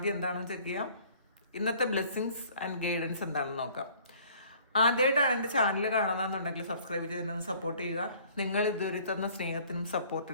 എന്താണെന്ന് ചെക്ക് ചെയ്യാം. ഇന്നത്തെ ബ്ലെസ്സിങ്സ് ആൻഡ് ഗൈഡൻസ് എന്താണെന്ന് നോക്കാം. ആദ്യമായിട്ടാണ് എൻ്റെ ചാനൽ കാണുന്നതെന്നുണ്ടെങ്കിൽ സബ്സ്ക്രൈബ് ചെയ്തതിനൊന്ന് സപ്പോർട്ട് ചെയ്യുക. നിങ്ങൾ ഇതുവരെ തന്ന സ്നേഹത്തിനും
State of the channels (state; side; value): inverted; both; correlation -0.55